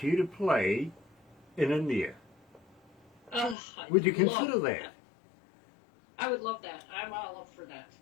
you to play in India. Oh, Would you consider that? I would love that. I'm all up for that.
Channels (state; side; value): drops out; right; at 3.6 s